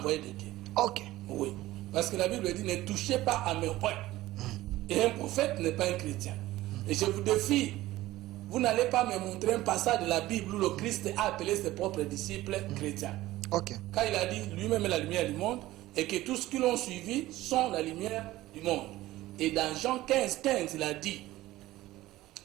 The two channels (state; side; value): quieter; left; 16.6 dB